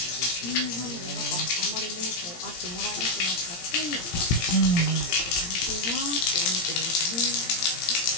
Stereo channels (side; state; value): right; late; 17 ms